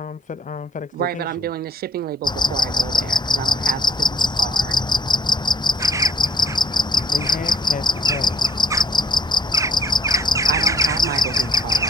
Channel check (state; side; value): normal; both; correlation 0.62